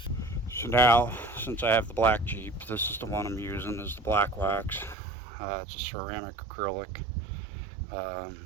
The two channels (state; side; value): drops out; left; at 5.0 s